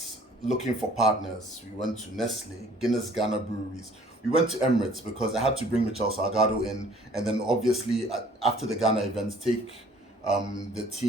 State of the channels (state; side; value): normal; both; correlation 0.55